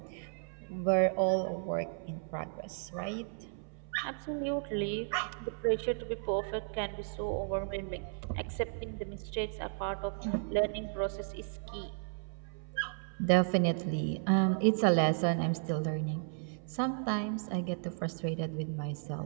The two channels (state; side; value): silent; left; 55 dB below the other